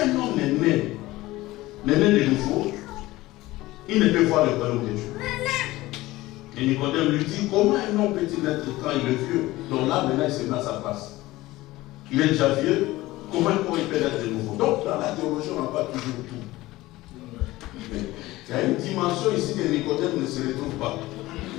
homme est né de nouveau, il ne peut voir le royaume de Dieu. Et Nicodème lui dit, comment un homme peut-il naître quand il est vieux, dont là maintenant il se met à sa place? Il est déjà vieux, comment il peut naître de nouveau. Donc, dans la théologie, on n'a pas toujours tout. Il y a une dimension ici que Nicodème ne se retrouve pas.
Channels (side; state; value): right; quieter; 18.2 dB